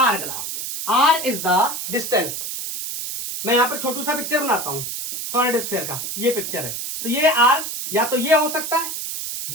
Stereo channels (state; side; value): noise; right; hiss, 5 dB below the sound